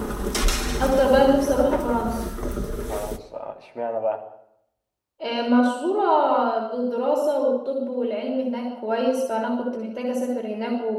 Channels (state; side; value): identical; both; correlation 1.00